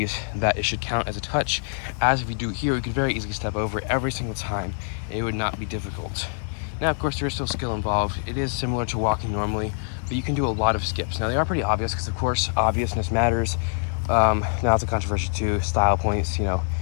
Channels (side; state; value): right; silent; digital silence